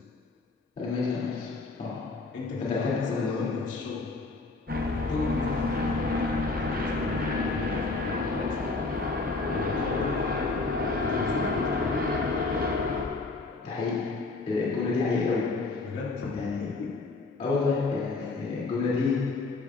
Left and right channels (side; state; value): right; quieter; 3.6 dB